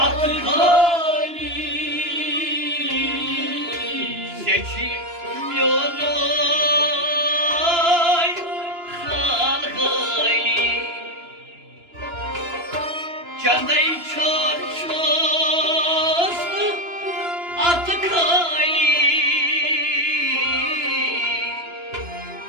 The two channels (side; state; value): left; late; 2.9 ms